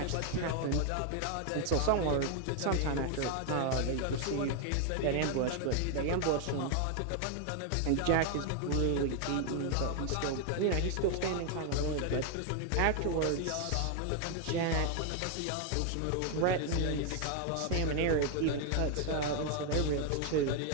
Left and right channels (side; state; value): both; different; correlation 0.01